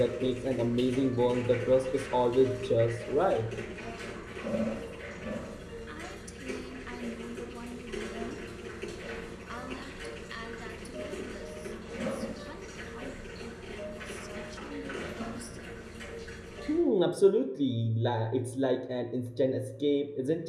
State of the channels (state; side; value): identical; both; correlation 1.00